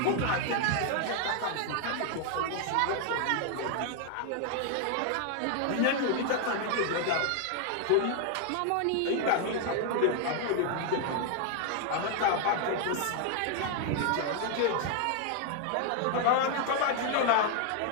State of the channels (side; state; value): both; different; correlation 0.00